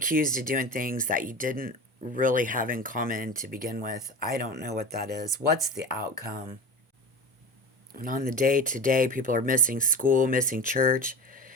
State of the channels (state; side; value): normal; both; correlation 0.30